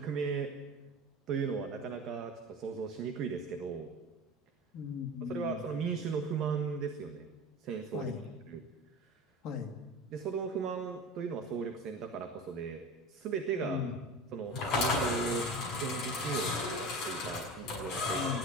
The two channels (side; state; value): both; normal; correlation 0.32